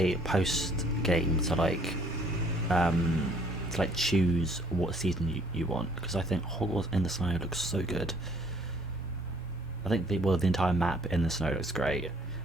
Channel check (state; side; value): normal; both; correlation 0.60